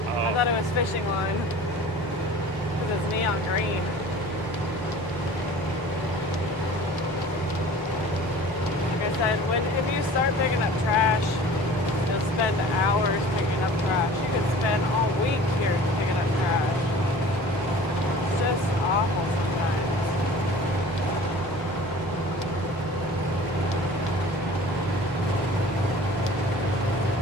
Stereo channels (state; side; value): normal; both; correlation 0.43